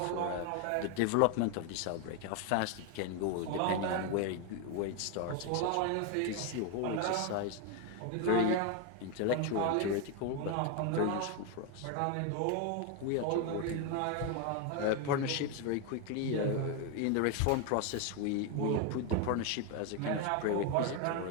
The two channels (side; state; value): both; different; correlation 0.01